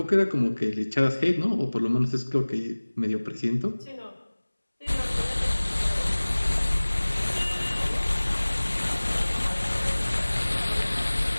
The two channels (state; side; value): inverted; both; correlation -1.00